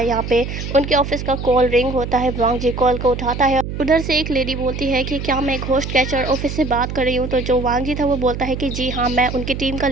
यहाँ पे उनके ऑफिस का कॉल रिंग होता है। वांगजी कॉल को उठाता है। उधर से एक लेडी बोलती है कि क्या मैं घोस्ट कैचर ऑफिस से बात कर रही हूँ। तो जो वांगजी था वो बोलता है कि जी हाँ, मैं उनकी टीम का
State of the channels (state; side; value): noise; right; hum, 6 dB below the sound